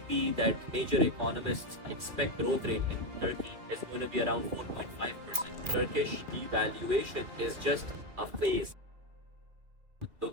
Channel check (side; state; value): left; late; 2.4 ms